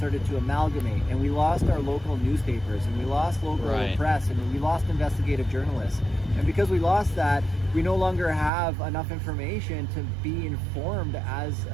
to amalgamate, and we lost our local newspapers, and we lost local press, and we lost investigative journalists. And because we lost that, we no longer have enough information to be informed as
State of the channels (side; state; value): left; drops out; at 8.5 s